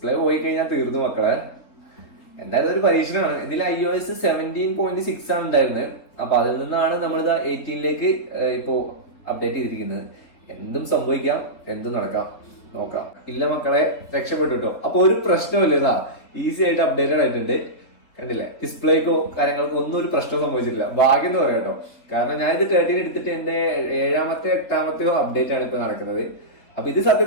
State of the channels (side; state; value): right; late; 3.8 ms